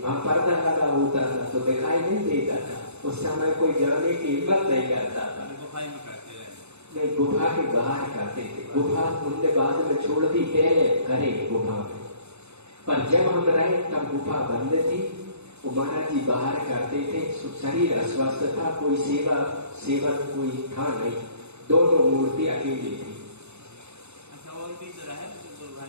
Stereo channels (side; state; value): left; late; 0.81 ms